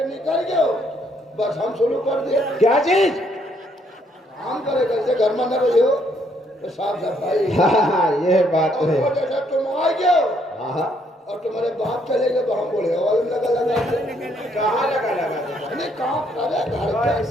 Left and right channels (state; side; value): normal; both; correlation 0.70